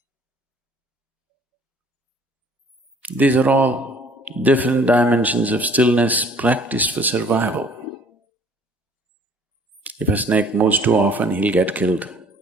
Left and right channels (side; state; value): both; normal; correlation 0.56